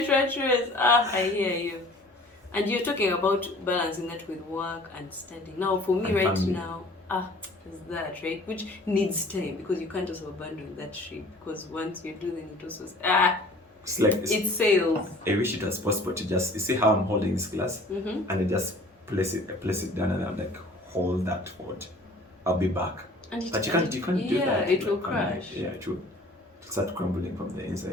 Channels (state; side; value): normal; both; correlation 0.49